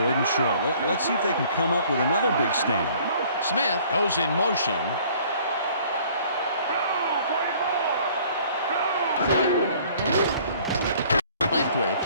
and short. Let's see if they can come up with another big stand. Smith goes in motion. Leftwich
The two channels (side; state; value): both; inverted; correlation -0.55